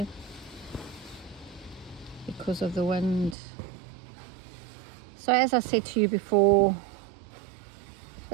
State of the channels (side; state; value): left; drops out; at 3.4 s